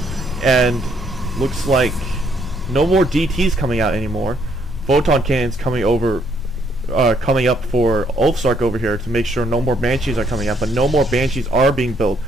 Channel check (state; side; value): normal; both; correlation 0.70